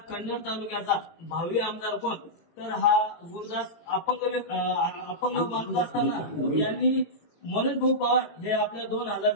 कन्नड तालुक्याचा भावी आमदार कोण. तर हा गुरुदास अपंग माणूस असताना यांनी मनोज भाऊ पवार हे आपल्या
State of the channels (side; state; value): right; late; 18 ms